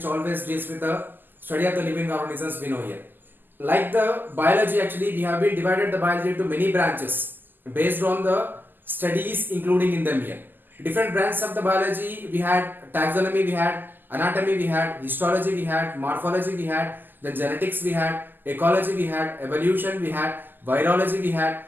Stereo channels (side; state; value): left; late; 0.090 ms